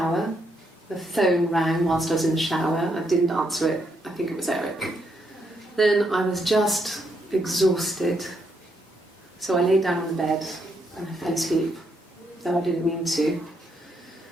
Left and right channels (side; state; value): both; normal; correlation 0.77